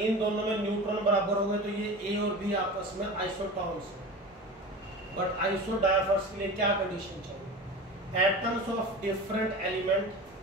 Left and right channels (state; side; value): normal; both; correlation 0.32